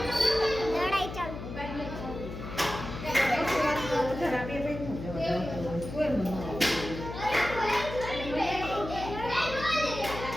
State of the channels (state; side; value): noise; left; hum, 9 dB below the sound